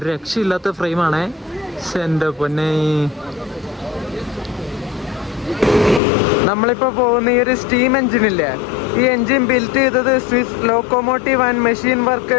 രക്ഷയില്ലാത്ത ഫ്രെയിമാണേ. എൻ്റെ പൊന്നെ. നമ്മളിപ്പോൾ പോകുന്ന ഈ ഒരു സ്റ്റീം എഞ്ചിനില്ലേ, ഈ എഞ്ചിൻ ബിൽറ്റ് ചെയ്തത് Swiss locomotive and machine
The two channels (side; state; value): right; drops out; at 6.0 s